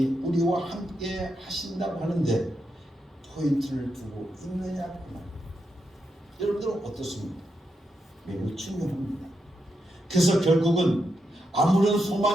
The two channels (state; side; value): normal; both; correlation 0.84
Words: 우리와 함께 하신다고 하는데 포인트를 두고 있느냐구나. 여러분들은 어떻습니까? 매우 중요합니다. 그래서 결국은 아무런